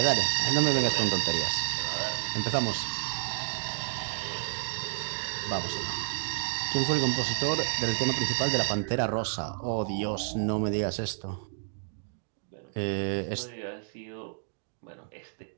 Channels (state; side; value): silent; left; digital silence